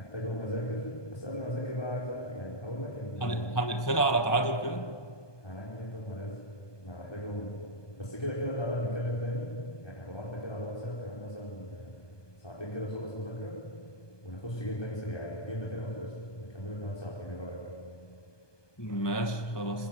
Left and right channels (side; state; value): right; late; 1.2 ms